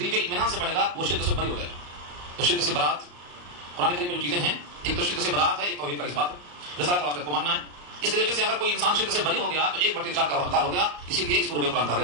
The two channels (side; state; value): left; late; 34 ms